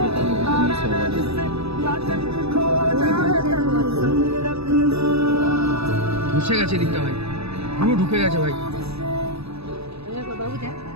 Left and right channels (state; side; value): late; left; 0.78 ms